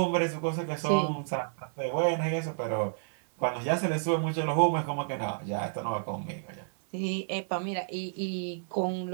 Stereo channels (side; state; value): left; silent; 58 dB below the other